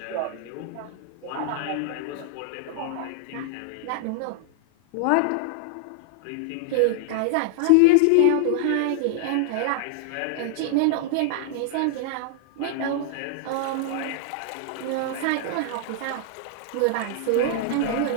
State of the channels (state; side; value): different; both; correlation -0.01